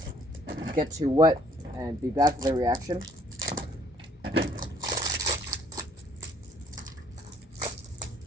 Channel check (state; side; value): normal; both; correlation 0.63